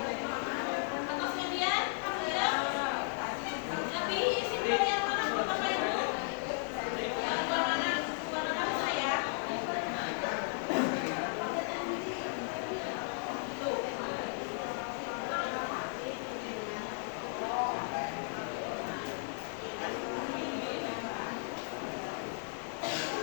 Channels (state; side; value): silent; right; 54 dB below the other